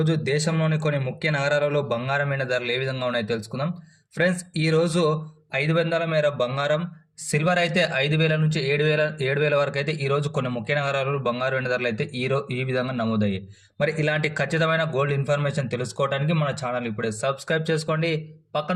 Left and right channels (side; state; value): both; identical; correlation 1.00